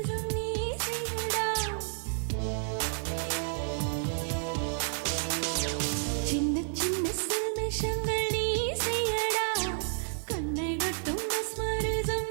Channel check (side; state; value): left; silent; digital silence